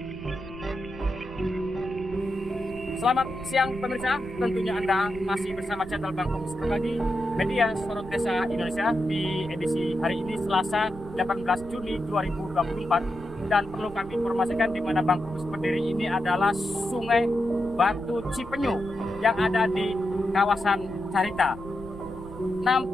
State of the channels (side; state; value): right; noise; rumble, 16 dB below the sound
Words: siang pemirsa, tentunya Anda masih bersama channel Bang Komus Berbagi Media Sorot Desa Indonesia di edisi hari ini Selasa 18 Juni 2024. Dan perlu kami informasikan di mana Bang Komus berdiri ini adalah Sungai Batu Cipenyu yang ada di kawasan Carita.